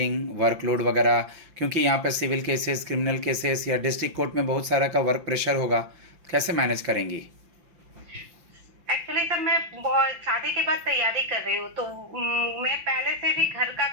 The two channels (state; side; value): late; left; 5.8 ms